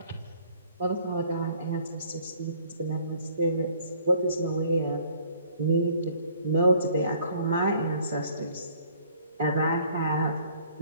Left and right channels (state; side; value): inverted; both; correlation -0.58